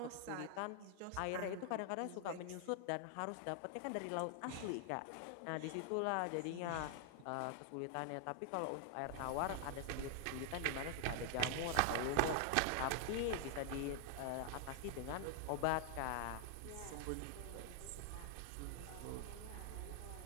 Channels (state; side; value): different; both; correlation 0.00